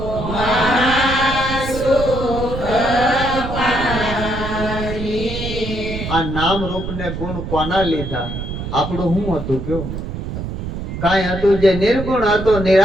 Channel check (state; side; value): noise; right; rumble, 6 dB below the sound